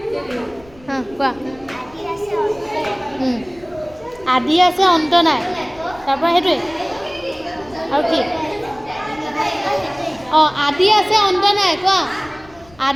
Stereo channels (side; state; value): left; noise; rumble, 25 dB below the sound